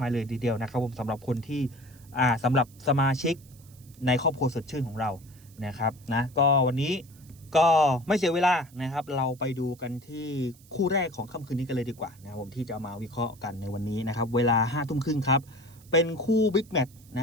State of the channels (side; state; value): right; noise; hiss, 26 dB below the sound